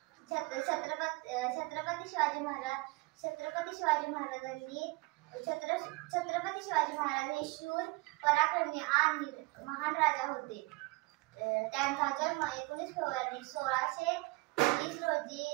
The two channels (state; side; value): quieter; left; 25.3 dB